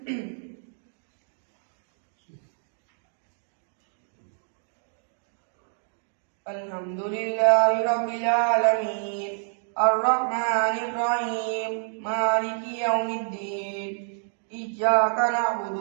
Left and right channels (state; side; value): silent; left; digital silence